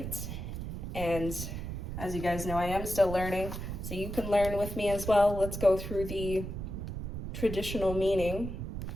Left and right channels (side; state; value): right; noise; rumble, 6 dB below the sound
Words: And as you guys know, I am still learning, so you can learn with me as well. Let's go through the traditional meaning